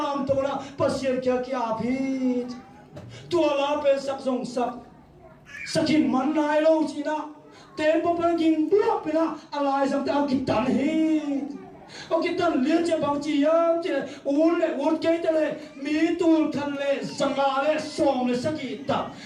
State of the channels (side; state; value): both; identical; correlation 1.00